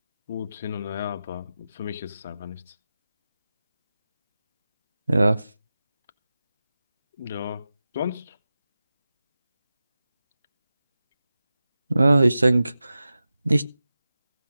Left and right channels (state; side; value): inverted; both; correlation -0.93